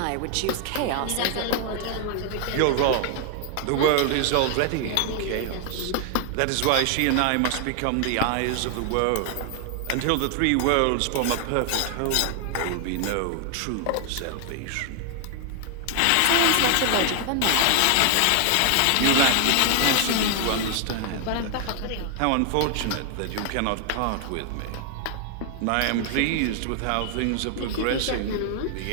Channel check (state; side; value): different; both; correlation 0.00